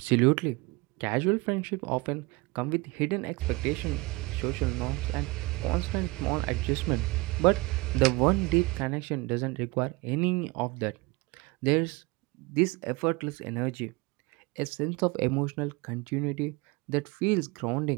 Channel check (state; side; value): quieter; left; 23.5 dB